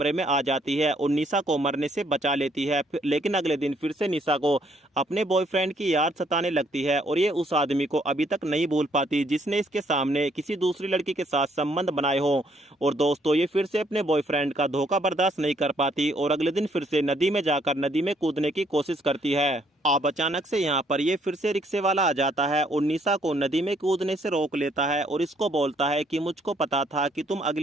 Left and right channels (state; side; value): normal; both; correlation 0.68